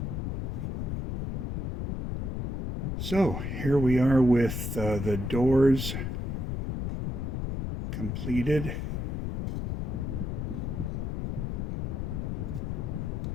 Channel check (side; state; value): left; noise; rumble, 3 dB below the sound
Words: So here we are with the doors completed.